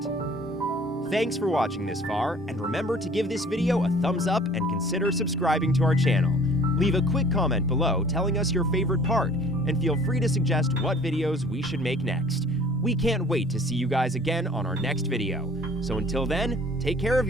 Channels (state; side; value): normal; both; correlation 0.51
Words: Thanks for watching this far, and remember to give this video a thumbs up and consider subscribing to our channel. Leave a quick comment below telling us your favorite part, and feel free to suggest what videos we should make next. We can't wait to see you guys again on our next video. So until then, take care of